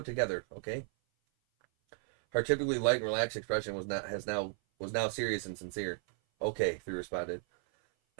together, okay?" Her typically light and relaxed expression was now serious and sincere. "Okay," Three responded.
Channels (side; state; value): left; silent; 55 dB below the other